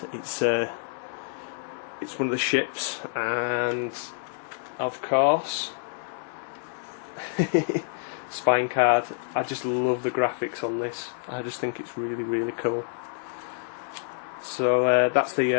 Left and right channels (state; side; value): silent; right; 60 dB below the other